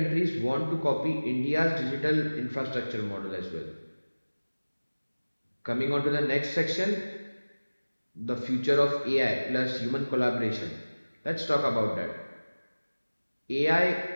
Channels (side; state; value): both; inverted; correlation -1.00